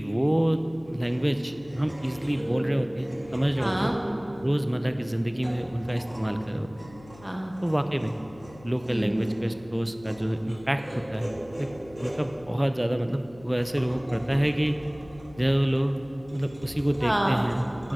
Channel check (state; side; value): noise; left; hum, 22 dB below the sound